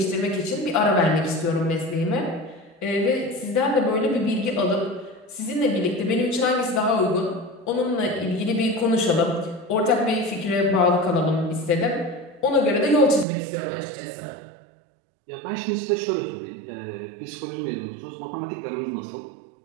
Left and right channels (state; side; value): drops out; left; at 13.2 s